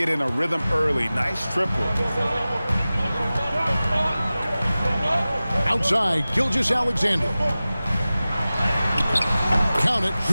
in a rhythm early. Nice triple. Outside, Gilgeous-Alexander. Count it,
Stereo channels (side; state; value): both; inverted; correlation -0.96